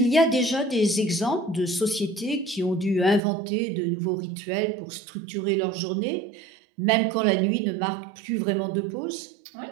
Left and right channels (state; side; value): drops out; left; at 3.2 s